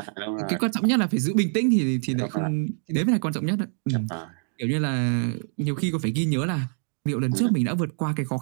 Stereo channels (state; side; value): silent; left; 56 dB below the other